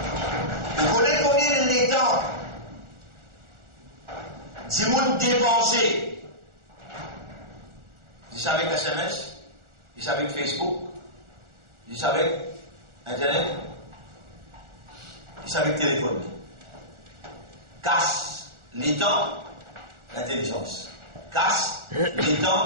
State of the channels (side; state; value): left; late; 1.4 ms